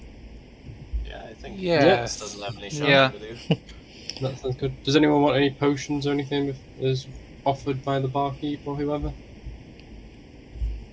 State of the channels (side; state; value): both; identical; correlation 1.00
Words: Yeah, I think Yes. doesn't have any shopping Yeah. to do. That sounds good. Does anyone want any potions or anything if is offered by the barkeep or whoever?